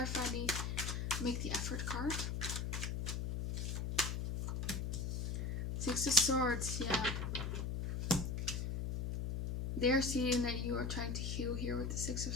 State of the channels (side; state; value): left; noise; hum, 1 dB below the sound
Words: the make the effort card. Six of Swords, yeah. They're seeing that you are trying to heal here with the Six of